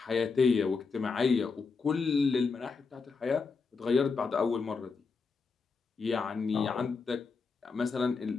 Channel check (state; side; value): quieter; right; 4.7 dB